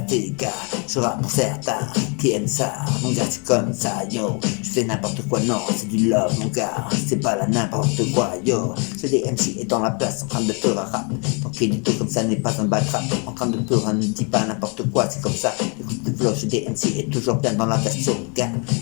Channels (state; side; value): quieter; right; 35.3 dB